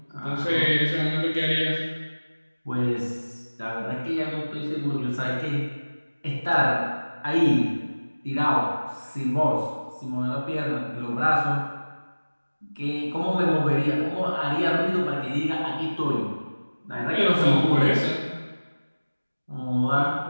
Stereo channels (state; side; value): inverted; both; correlation -1.00